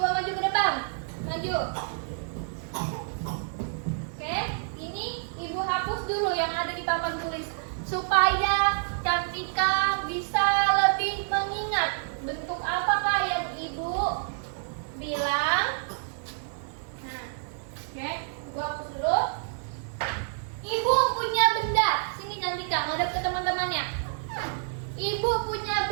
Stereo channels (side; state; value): left; silent; digital silence